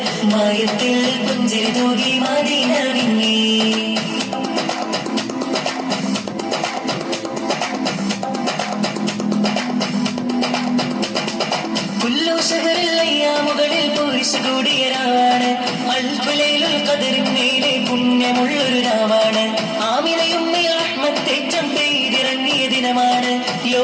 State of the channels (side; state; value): both; identical; correlation 1.00